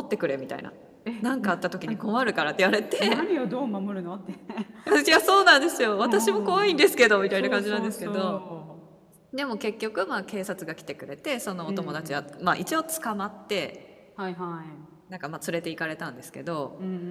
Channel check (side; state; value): both; identical; correlation 1.00